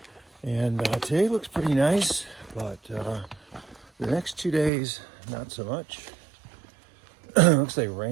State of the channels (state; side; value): drops out; left; at 4.7 s